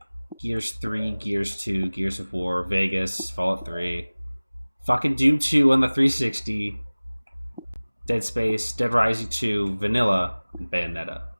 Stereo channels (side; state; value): both; inverted; correlation -1.00